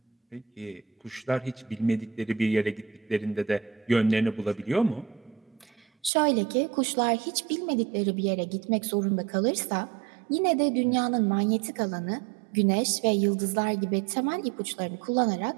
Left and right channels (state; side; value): drops out; left; at 6.1 s